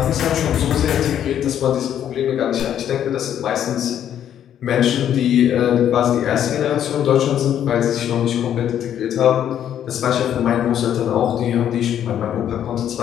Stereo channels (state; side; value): quieter; right; 10.1 dB